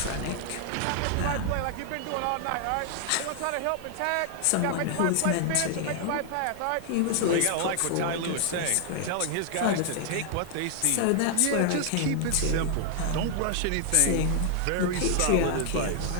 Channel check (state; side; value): different; both; correlation 0.00